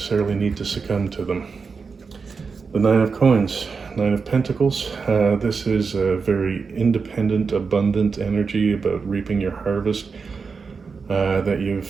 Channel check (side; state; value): left; quieter; 5.1 dB